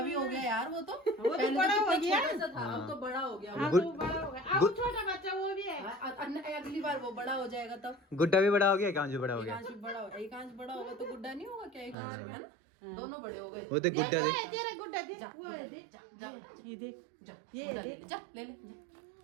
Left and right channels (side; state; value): left; drops out; at 12.0 s